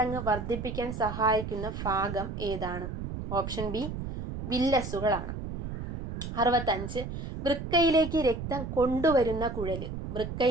വർദ്ധിപ്പിക്കാൻ സഹായിക്കുന്ന ഭാഗം ഏതാണ്? Option B വില്ലസുകളാണ്. 65. വൃക്കയിലേക്ക് രക്തം കൊണ്ടുവരുന്ന കുഴല്.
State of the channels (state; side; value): noise; right; rumble, 6 dB below the sound